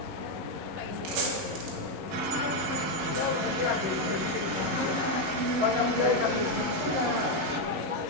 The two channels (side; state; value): left; late; 11 ms